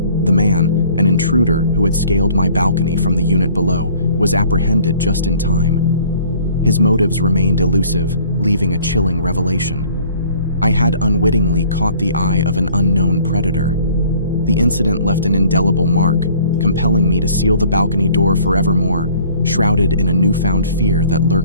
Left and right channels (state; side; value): inverted; both; correlation -0.53